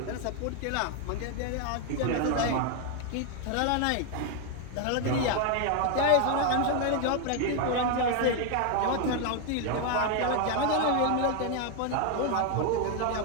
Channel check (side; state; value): both; different; correlation 0.01